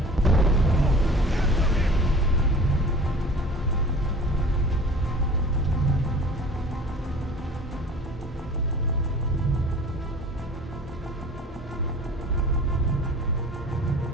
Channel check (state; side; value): normal; both; correlation 0.43